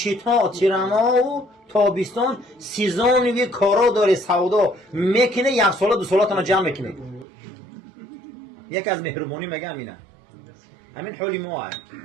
تیرما و تابستان سیزانی کارا داره سودا میکنه، یک سال 2 سالاتون جمع میکنه. یک از مهربانی میگه همینه. همین حالی ما هست.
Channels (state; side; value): drops out; left; at 7.2 s